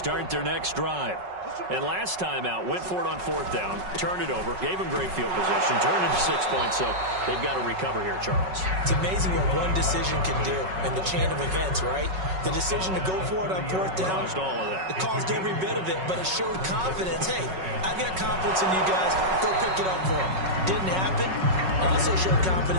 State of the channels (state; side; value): late; left; 5.4 ms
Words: their next drive. And last time out, went for it on 4th down, turned it over, gave him great field position, turned it to 6 points, so they've got to recover here, Charles. It's amazing what one decision can do in the chain of events, right? The decision to go for it on 4th down. Caused all of that. It caused every bit of it, but it showed confidence. Hey, I've got confidence in you guys. Go pick it up for them. Didn't happen. Also showed